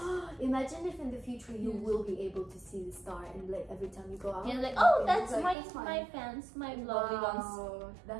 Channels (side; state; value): left; drops out; at 5.6 s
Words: Imagine if in the future you will be able to see the star and like every time you go out. Yeah, like, oh, okay, that's my fans, my lovely ones. Wow,